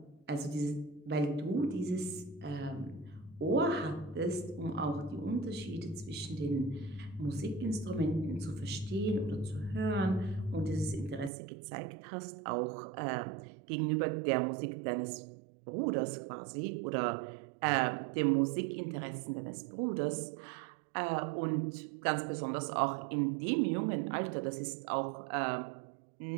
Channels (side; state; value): left; drops out; at 11.3 s